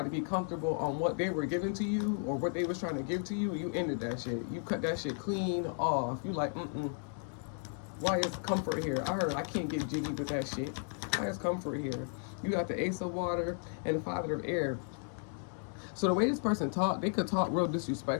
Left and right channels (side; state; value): right; silent; 55 dB below the other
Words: to be comfortable on what they were giving to you or what they was trying to give to you. You ended that shit. You cut that shit clean off. You like, why is comfort here? I heard I can't get jiggy with that shit. Why is comfort here? You got the Ace of Water and the Father of Air. So the way this person talked, they could talk real